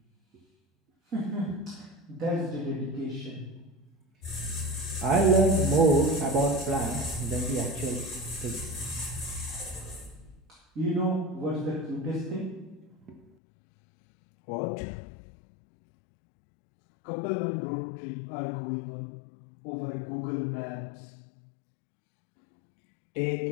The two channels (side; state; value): right; drops out; at 13.3 s